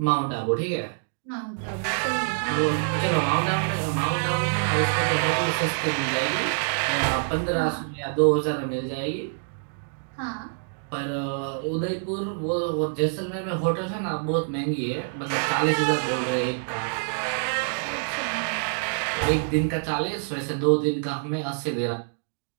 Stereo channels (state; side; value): silent; left; digital silence